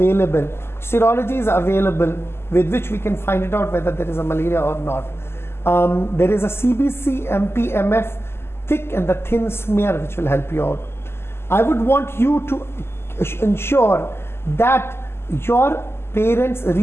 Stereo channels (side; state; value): right; late; 0.12 ms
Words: Serology is available with which we can find it out whether there is a malaria or not. There is a CBC, MP, MF, thick and the thin smear which will help you out. I would want you to ensure that your parents